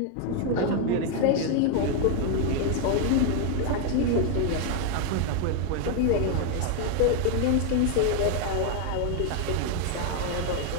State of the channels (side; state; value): both; different; correlation 0.00